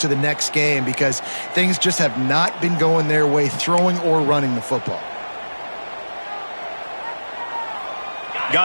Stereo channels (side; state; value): both; inverted; correlation -1.00